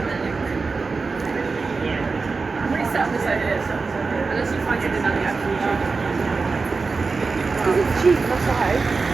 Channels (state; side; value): quieter; left; 4.3 dB